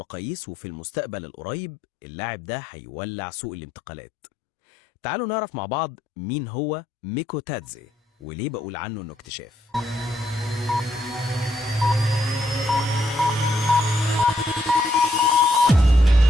وفي المستقبل القريب اللاعب ده هيولع سوق الانتقالات. تعالوا نعرف مع بعض مين هو ميكوتادزي وليه بقول عنه انه اكتشاف.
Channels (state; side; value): normal; both; correlation 0.75